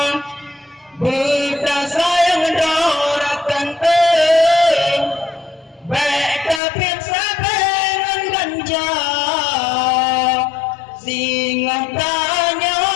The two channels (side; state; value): right; drops out; at 6.6 s